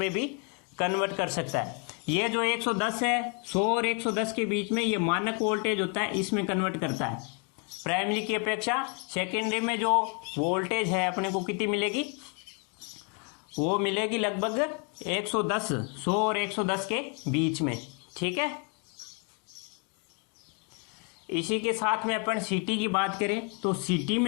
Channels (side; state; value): right; quieter; 35.0 dB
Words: भी कन्वर्ट कर सकता है। ये जो 110 है, 100 और 110 के बीच में ये मानक वोल्टेज होता है, इसमें कन्वर्ट करता है। प्राइमरी की अपेक्षा सेकेंडरी में जो वोल्टेज है अपने को कितनी मिलेगी? वो मिलेगी लगभग 110, 100 और 110 के बीच में। ठीक है, इसी के साथ में अपन सीटी की बात करें तो सीटी